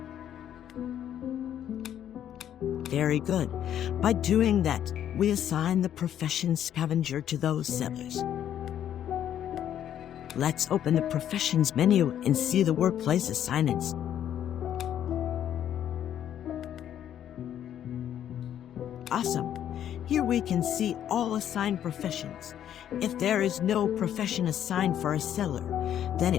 Very good. By doing that, we assign the profession scavenger to those settlers. Let's open the professions menu and see the workplace assignments. Awesome. Here we can see all assigned professions. If there is no profession assigned for a settler, then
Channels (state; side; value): quieter; right; 10.4 dB